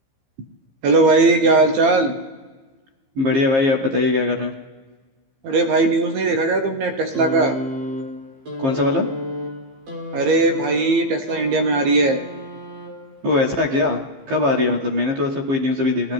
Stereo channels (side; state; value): left; late; 15 ms